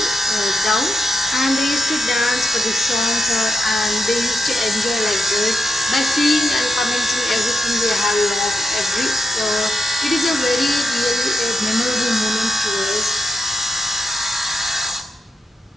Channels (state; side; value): normal; both; correlation 0.86